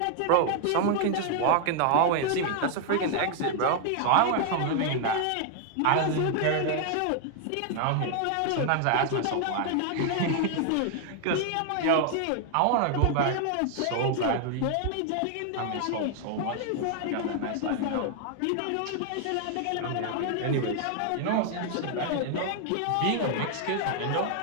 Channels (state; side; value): different; both; correlation 0.00